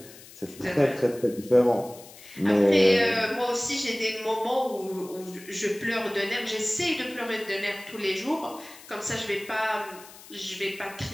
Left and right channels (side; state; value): left; noise; hiss, 19 dB below the sound